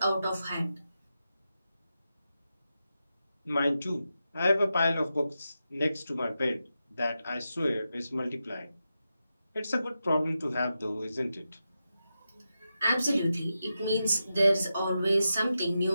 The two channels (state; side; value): inverted; both; correlation -0.89